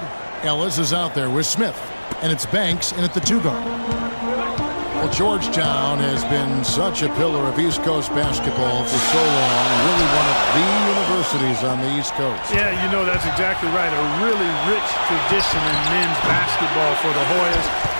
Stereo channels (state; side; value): inverted; both; correlation -1.00